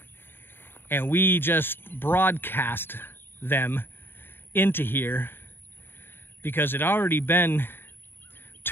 And we just broadcast them into here because it had already been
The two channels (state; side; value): late; right; 0.10 ms